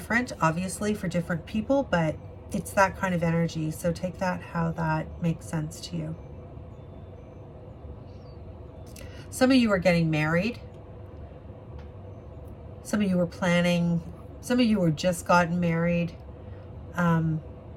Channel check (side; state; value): both; identical; correlation 1.00